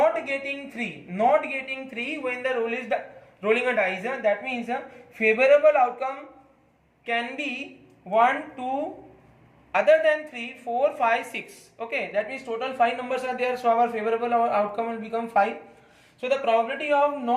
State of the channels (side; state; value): both; identical; correlation 1.00